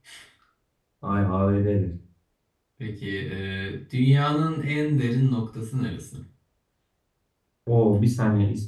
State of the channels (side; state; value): both; identical; correlation 1.00